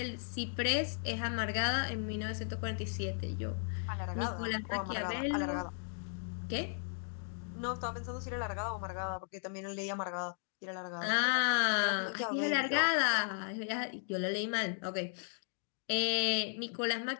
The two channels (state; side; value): silent; right; digital silence